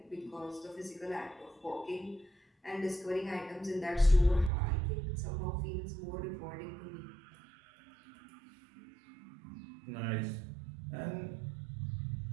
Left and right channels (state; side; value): drops out; left; at 4.5 s